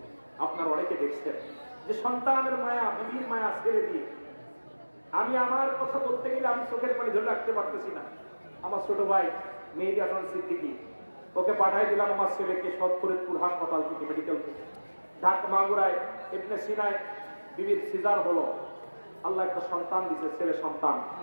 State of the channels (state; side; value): inverted; both; correlation -1.00